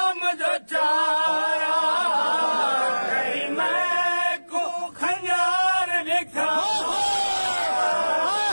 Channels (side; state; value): both; inverted; correlation -1.00